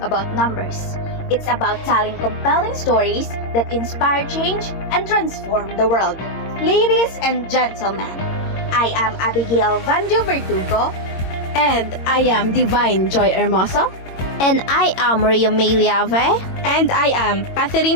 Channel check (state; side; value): late; right; 22 ms